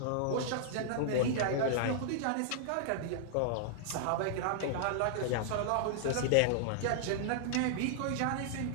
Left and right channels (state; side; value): different; both; correlation -0.01